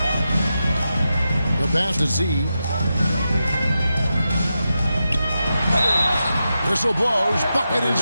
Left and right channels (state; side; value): inverted; both; correlation -0.89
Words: The pass to Z. Whistle blows. Bucket is